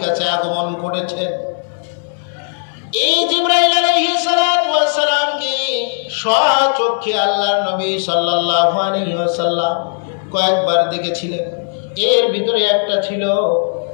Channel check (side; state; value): right; silent; digital silence